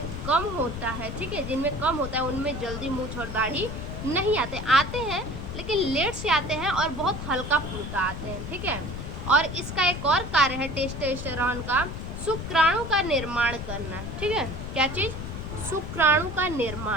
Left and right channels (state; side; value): noise; left; rumble, 7 dB below the sound